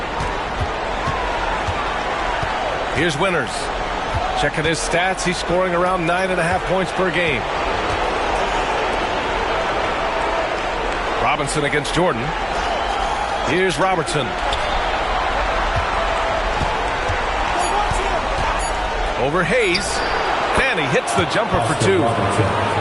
Here's Winters. Checking his stats, he's scoring around 9.5 points per game. Robinson against Jordan. Here's Robertson. Over Hayes. Fanny hits the jumper for 2.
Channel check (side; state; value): both; identical; correlation 1.00